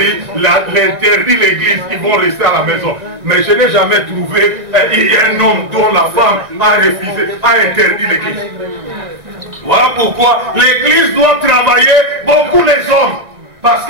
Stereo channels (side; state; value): left; late; 1.7 ms